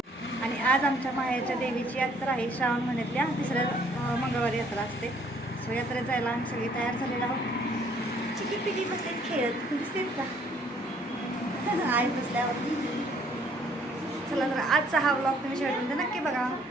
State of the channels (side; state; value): both; normal; correlation 0.62